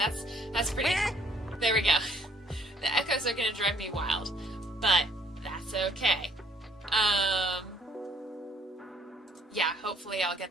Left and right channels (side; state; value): both; normal; correlation 0.62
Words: that's pretty. There we go. The echoes are gonna drive me wild, but that's okay. Yeah, hopefully I'll